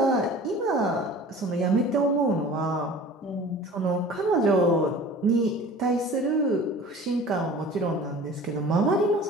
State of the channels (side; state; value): both; normal; correlation 0.42